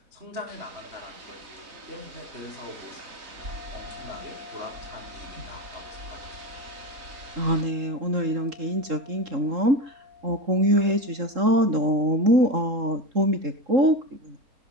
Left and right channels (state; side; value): late; left; 3.7 ms